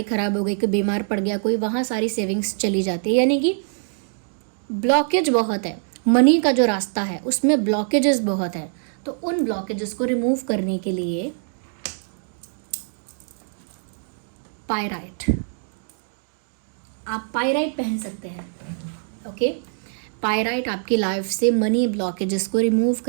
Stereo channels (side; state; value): left; silent; digital silence